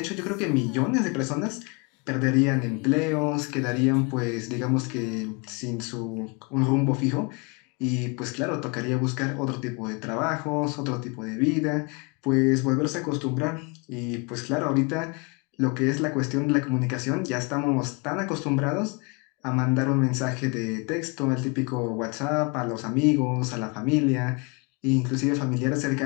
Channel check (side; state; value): right; quieter; 31.2 dB